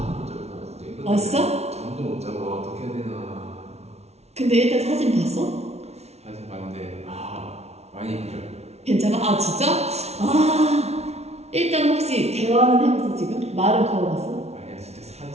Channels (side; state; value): left; late; 0.31 ms